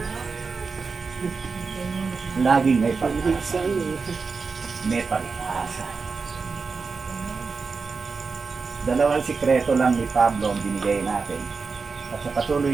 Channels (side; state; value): left; quieter; 4.7 dB